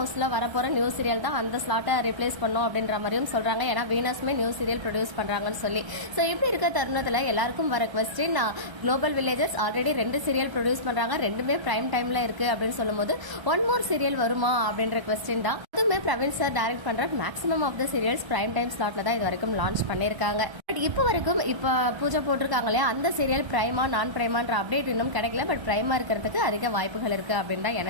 வரப்போற நியூ சீரியல் தான் அந்த ஸ்லாட்டை ரிப்ளேஸ் பண்ணும் அப்படின்ற மாதிரியும் சொல்றாங்க. ஏன்னா வீனஸ்மே நியூ சீரியல் ப்ரொடியூஸ் பண்றாங்கன்னு சொல்லி. ஸோ இப்படி இருக்க தருணத்துல எல்லாருக்கும் வர question, global villages already 2 serial produce பண்றாங்க. ரெண்டுமே பிரைம் டைம்ல இருக்கு அப்படின்னு சொல்லும் போது ஒன் மோர் சீரியல் வருமா அப்படின்ற கொஸ்டின் தான். அதுவுமே பிரவீன் சார் டைரக்ட் பண்ற maximum of the serials prime time ஸ்லாட்ல தான் இது வரைக்கும் லான்ச் பண்ணிருக்காங்க. பட் இப்போ வரைக்கும் இப்ப பூஜை போட்டிருக்காங்க இல்லையா, அந்த சீரியல் பிரைமா நான் பிரைமான்ற அப்டேட் இன்னும் கிடைக்கல. பட் பிரைமா இருக்கிறதுக்கு அதிக வாய்ப்புகள் இருக்கு அப்படின்னு தான்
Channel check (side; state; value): left; late; 1.3 ms